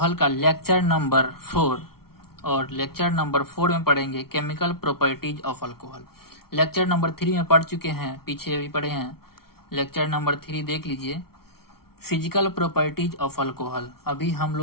का लेक्चर नंबर 4। और लेक्चर नंबर 4 में पढ़ेंगे chemical properties of alcohol. Lecture number 3 में पढ़ चुके हैं, पीछे अभी पढ़े हैं। लेक्चर नंबर 3 देख लीजिए, फिजिकल प्रॉपर्टीज ऑफ अल्कोहल। अभी हम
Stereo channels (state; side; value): late; right; 0.94 ms